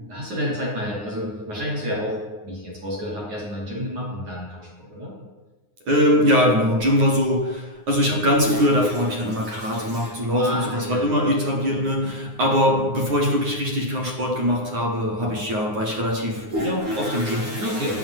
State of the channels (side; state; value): left; late; 9.6 ms